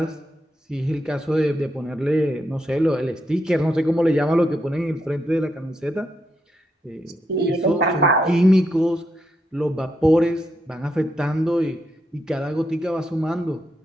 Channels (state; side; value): normal; both; correlation 0.81